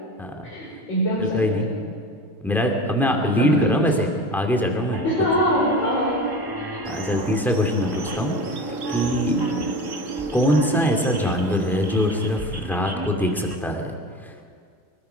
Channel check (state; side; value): normal; both; correlation 0.33